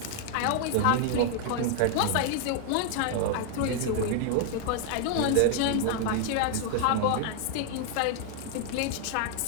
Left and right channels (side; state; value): both; different; correlation 0.00